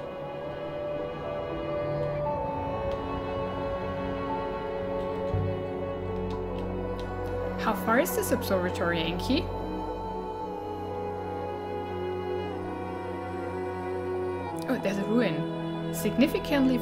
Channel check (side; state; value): both; identical; correlation 1.00